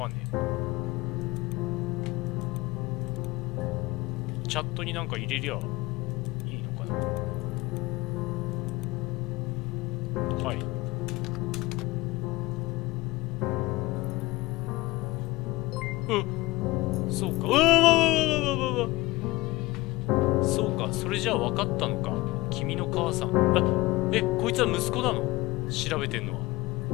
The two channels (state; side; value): quieter; right; 20.4 dB